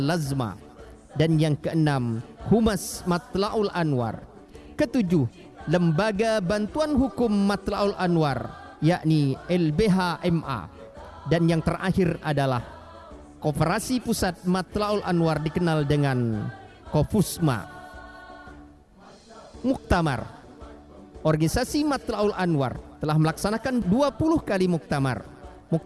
LAZMA. Dan yang keenam, Humas Matla'ul Anwar. Ketujuh, lembaga bantuan hukum Matla'ul Anwar yakni LBH MA. Dan yang terakhir adalah Koperasi Pusat Matla'ul Anwar dikenal dengan Kofusma. Muktamar. Organisasi Matla'ul Anwar telah melaksanakan 20 kali muktamar.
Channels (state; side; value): identical; both; correlation 1.00